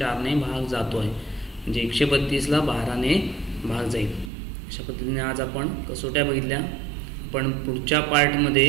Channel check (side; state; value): left; drops out; at 4.3 s